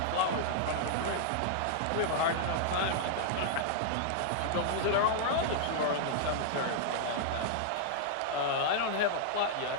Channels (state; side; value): different; both; correlation -0.01